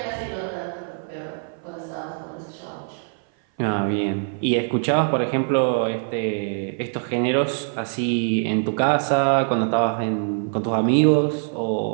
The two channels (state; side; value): silent; left; 57 dB below the other